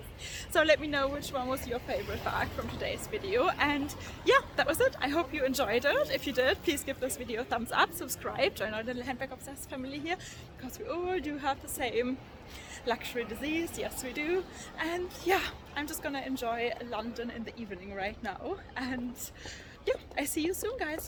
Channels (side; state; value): both; identical; correlation 1.00